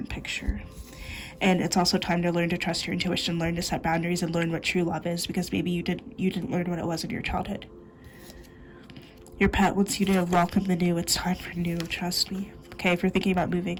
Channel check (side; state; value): both; identical; correlation 1.00